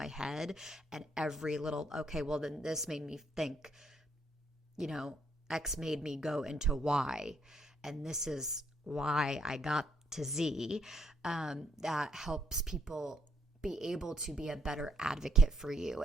head and every little, okay, well then this made me think, X made me go into Y, and this is why I got to Z, that helps people be able to be a better advocate for you.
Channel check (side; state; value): both; normal; correlation 0.71